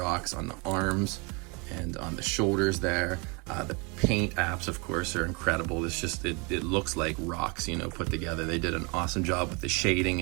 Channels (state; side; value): quieter; left; 30.8 dB